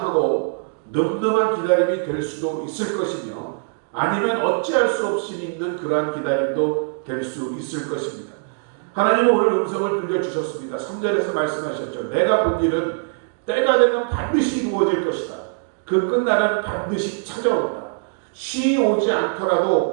늠름한 기다림이 될 수도 있을 것이며, 아니면 어찌할 수 없이 믿는 그러한 기다림도 될 수 있을 것입니다. 하나님은 오늘 음성을 들려주셨습니다. 3절에서 말씀하셨죠. 내가 본 일은 때가 되면 반드시 이루어질 것이다. 그 끝날은 반드시 찾아온다. 쉬 오지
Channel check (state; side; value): silent; left; digital silence